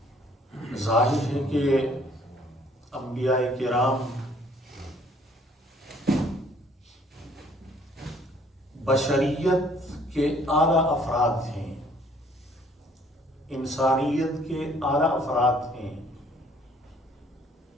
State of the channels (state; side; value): normal; both; correlation 0.60